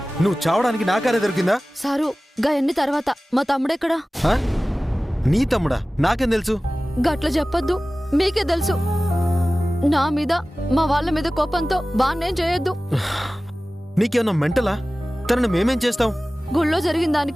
నువ్వు చావడానికి నా కారే దొరికిందా? సారు గా ఎన్ని తర్వాత మా తమ్ముడెక్కడా? నీ తమ్ముడా? నాకేం తెలుసు? గట్ల చెప్పొద్దు, మీకే తెలుసు. నా మీద మా వాళ్ళ మీద కోపంతో బాన్నేం చేయొద్దు. నీకేమన్నా మెంటలా? తనని మేమేం చేస్తాం? గుళ్ళో జరిగిన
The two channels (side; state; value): both; normal; correlation 0.97